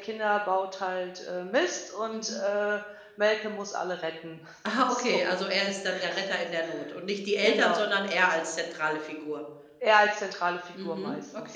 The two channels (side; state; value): both; identical; correlation 1.00